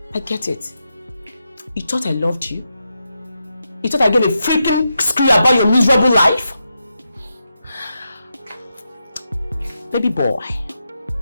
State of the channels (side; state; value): both; inverted; correlation -0.86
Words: I get it. You thought I loved you? You thought I gave a freaking screw about your miserable life? Baby boy,